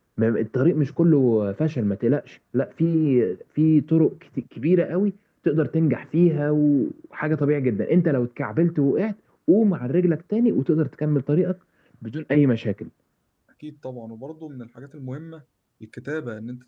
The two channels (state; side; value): identical; both; correlation 1.00